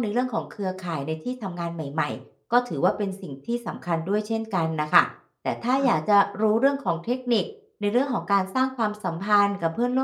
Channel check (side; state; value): both; identical; correlation 1.00